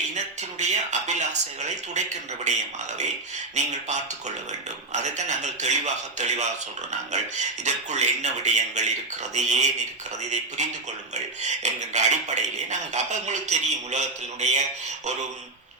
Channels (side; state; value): left; quieter; 3.2 dB